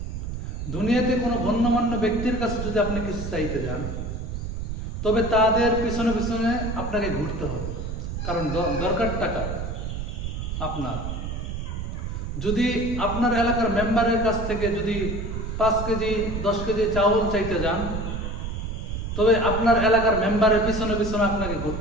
দুনিয়াতে কোনো গণ্যমান্য ব্যক্তির কাছে যদি আপনি কিছু চাইতে যান, তবে তাদের পিছনে পিছনে আপনাকে ঘুরতে হবে, কারণ দরকার টাকা আপনার। যদি আপনার এলাকার মেম্বারের কাছ থেকে যদি 5 কেজি 10 কেজি চাউল চাইতে যান, তবে আপনার এলাকার মেম্বারের পিছনে পিছনে আপনাকে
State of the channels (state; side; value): noise; right; rumble, 5 dB below the sound